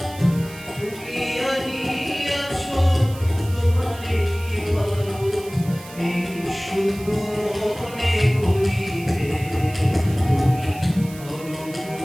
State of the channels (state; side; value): noise; right; hiss, 18 dB below the sound